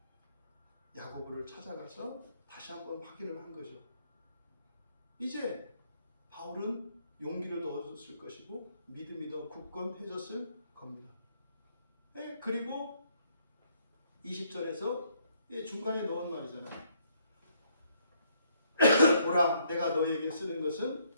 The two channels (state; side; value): inverted; both; correlation -0.69